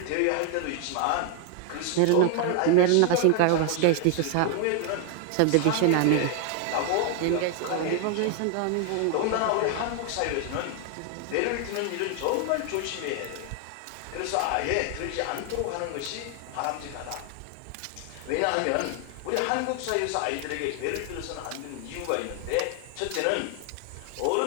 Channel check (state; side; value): different; both; correlation 0.00